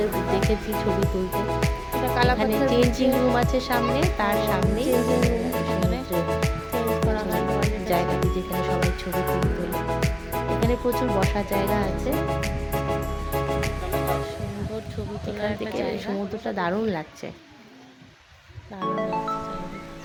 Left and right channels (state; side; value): identical; both; correlation 1.00